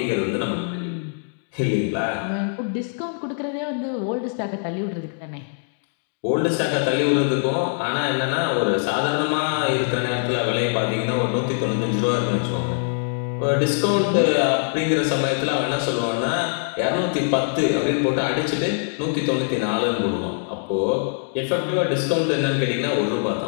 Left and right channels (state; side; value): silent; right; digital silence